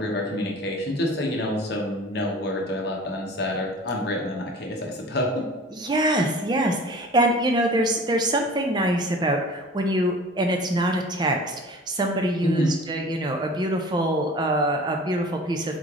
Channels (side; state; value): both; normal; correlation 0.42